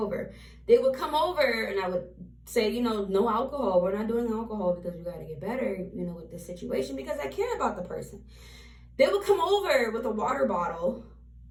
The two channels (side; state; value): both; identical; correlation 1.00